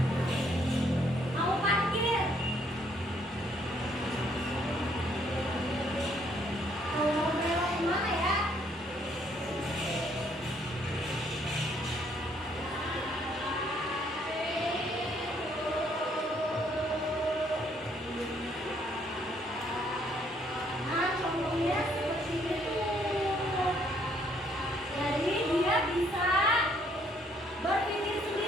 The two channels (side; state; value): both; normal; correlation 0.67